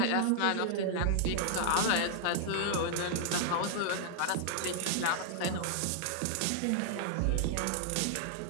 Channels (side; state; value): both; different; correlation -0.01